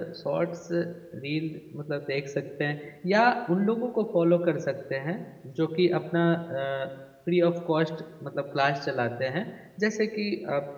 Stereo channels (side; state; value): both; identical; correlation 1.00